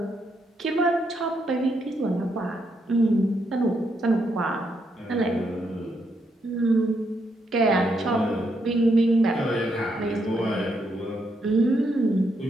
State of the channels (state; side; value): normal; both; correlation 0.78